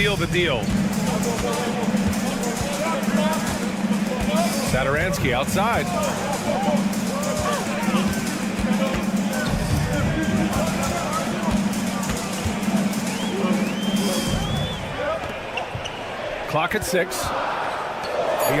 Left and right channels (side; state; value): both; identical; correlation 1.00